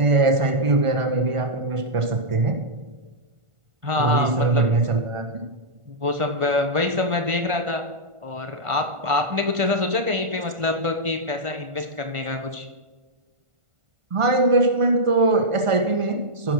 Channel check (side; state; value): left; late; 1.5 ms